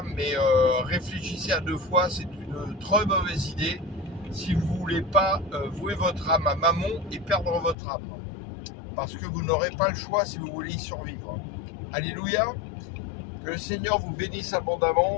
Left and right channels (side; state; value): right; drops out; at 7.8 s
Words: mais réfléchissez à deux fois, c'est une très mauvaise idée si vous ne voulez pas vouer votre âme à Mammon et perdre votre âme. Parce que vous n'aurez pas le choix si vous voulez y survivre. Alléluia. Que le Seigneur vous bénisse